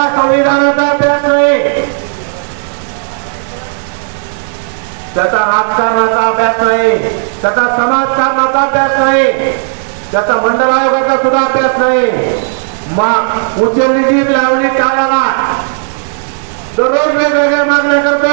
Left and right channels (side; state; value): left; silent; digital silence